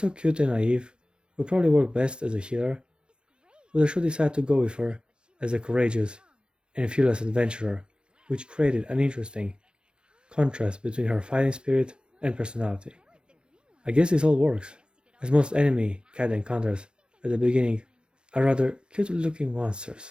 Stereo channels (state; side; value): late; left; 0.051 ms